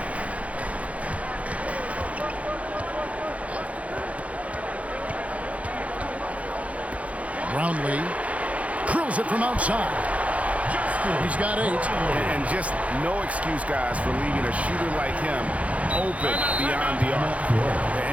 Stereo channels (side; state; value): left; late; 0.066 ms